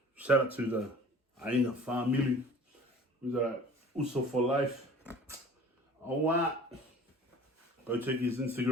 Shout out to the Aina family, who's also for life. Oh, what? Go check his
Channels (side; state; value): both; normal; correlation 0.45